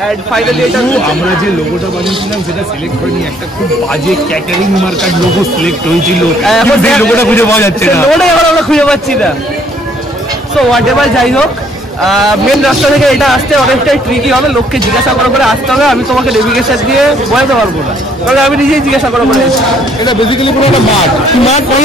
এন্ড ফাইনালি এটা আমরা যে লোগোটা বানিয়েছিলাম সেটা সিলেক্ট হয়নি, একটা খুব বাজে ক্যাটারিং মার্কার লোগো সিলেক্ট হয়েছিল। এখন সেই লোগোটা খুঁজে পাওয়া যাচ্ছে না, লোগোটা এখন আমরা খুঁজে পাচ্ছি না। সো হোয়াট এভার, যাই হোক, মেন রাস্তা থেকে এটা আসতে অনেকটাই ট্রিকি হবে, লোককে জিজ্ঞাসা করে আসতে হবে। আমি তোমাকে নেভিগেশন দিয়ে বোঝাতে পারবো না, কারণ আমি নিজেই জিজ্ঞাসা করে এটা বেসিক্যালি পুরো একটা মাঠ। মাঠ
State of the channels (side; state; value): both; normal; correlation 0.64